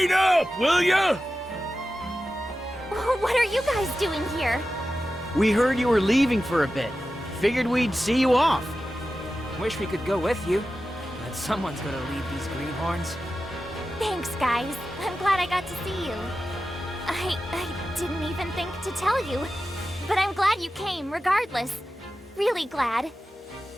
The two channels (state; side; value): normal; both; correlation 0.93